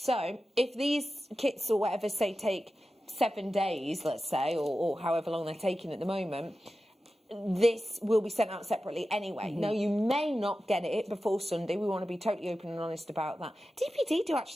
if these kits or whatever, say, take 7 days, let's say, or however long they're taking at the moment, this will be sent out separately anyway. Now, you may not get it before Sunday. We want to be totally open and honest about that. DPD do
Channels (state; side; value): normal; both; correlation 0.93